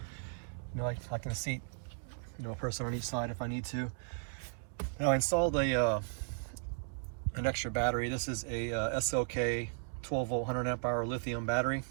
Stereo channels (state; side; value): silent; left; digital silence